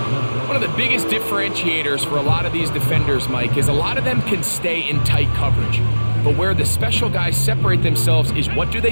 One of the biggest differentiators for a lot of these defenders, Mike, is a lot of them can stay in tight coverage. But where the special guys separate themselves is what do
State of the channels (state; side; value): inverted; both; correlation -1.00